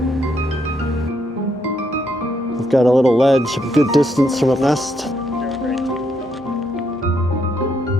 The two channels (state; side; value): normal; both; correlation 0.75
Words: We've got a little ledge, a good distance from a nest.